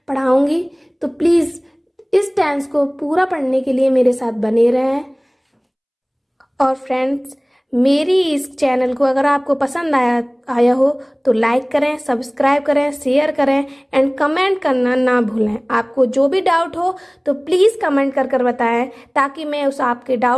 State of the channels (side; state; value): both; identical; correlation 1.00